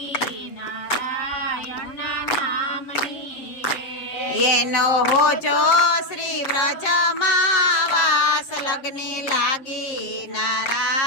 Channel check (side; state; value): right; late; 7.7 ms